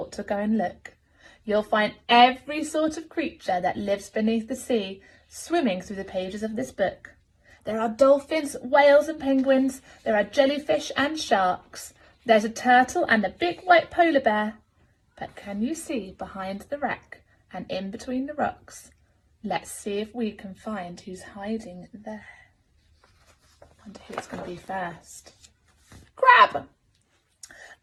to go and look. You'll find every sort of creature that lives beneath the sea swimming through the pages of this book. There are dolphins, whales and penguins. There are jellyfish and sharks. There's a turtle and a big white polar bear. But can you see behind the wreck and in between the rocks? Let's see if we can find who's hiding there. I wonder who it's going to be first. Crab!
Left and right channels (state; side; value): identical; both; correlation 1.00